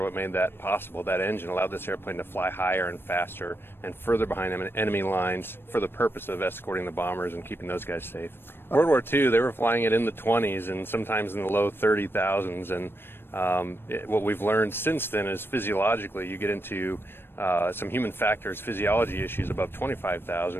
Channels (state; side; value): late; right; 0.10 ms